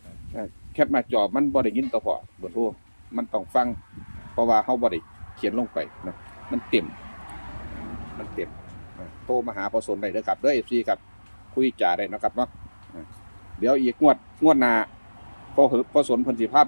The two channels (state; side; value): inverted; both; correlation -1.00